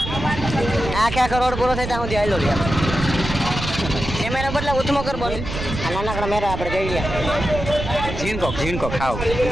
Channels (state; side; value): noise; right; rumble, 6 dB below the sound